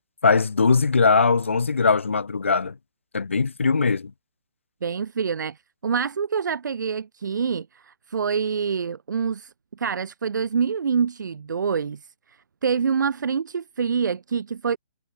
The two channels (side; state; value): both; inverted; correlation -0.64